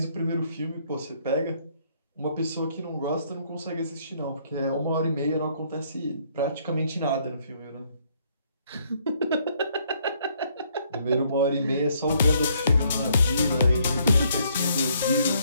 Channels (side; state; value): both; inverted; correlation -0.68